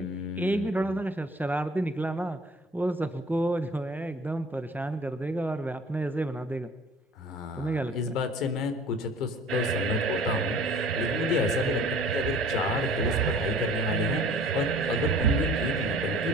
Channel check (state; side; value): normal; both; correlation 0.49